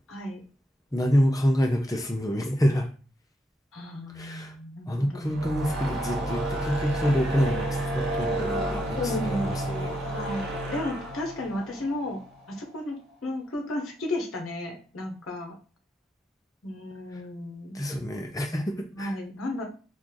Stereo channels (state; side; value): normal; both; correlation 0.81